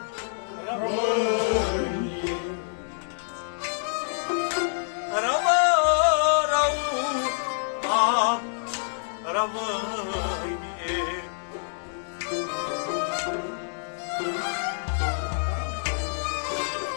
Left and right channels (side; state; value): right; silent; digital silence